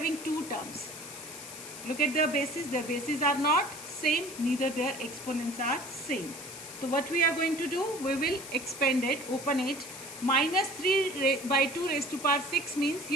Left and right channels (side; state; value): left; noise; hiss, 12 dB below the sound